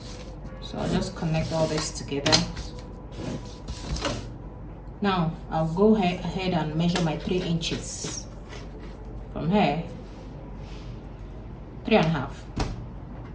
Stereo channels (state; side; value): identical; both; correlation 1.00